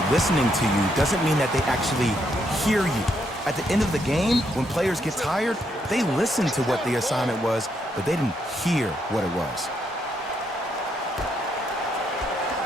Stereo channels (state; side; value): normal; both; correlation 0.76